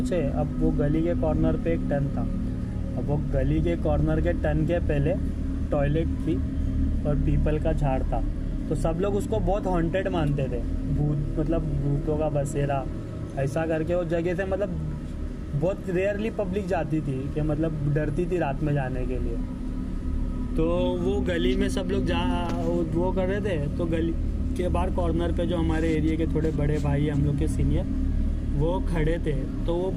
अब वो गली के कॉर्नर पे एक टर्न था। अब वो गली के कॉर्नर के टर्न के पहले टॉयलेट थी और पीपल का झाड़ था। तो सब लोग उसको बहुत हॉन्टेड मानते थे, भूत मतलब भूतों का बसेरा ऐसा करके। वो जगह से मतलब बहुत रेयरली पब्लिक जाती थी, कि मतलब डरती थी रात में जाने के लिए। तो वो गली में सब लोग वो कर रहे थे। तो गली के बाहर कॉर्नर पे जो हमारे एरिया के थोड़े बड़े भाई हम लोग के सीनियर, वो खड़े थे। तो वो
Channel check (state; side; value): identical; both; correlation 1.00